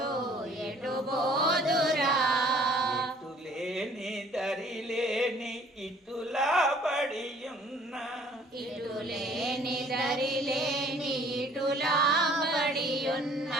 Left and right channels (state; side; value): normal; both; correlation 0.56